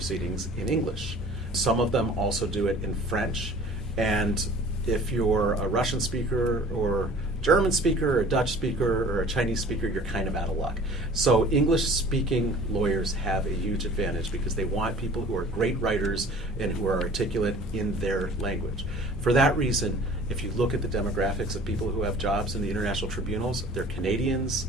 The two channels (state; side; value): normal; both; correlation 0.47